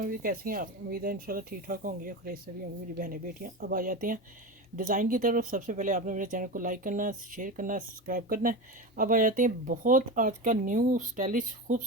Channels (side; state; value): both; normal; correlation 0.23